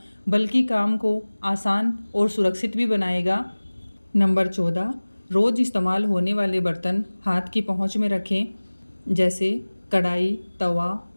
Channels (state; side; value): inverted; both; correlation -1.00